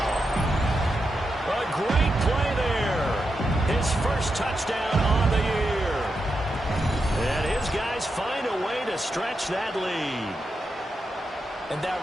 A great play there. His first touchdown on the year. And his guys find a way to stretch that lead. And that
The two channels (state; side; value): normal; both; correlation 0.86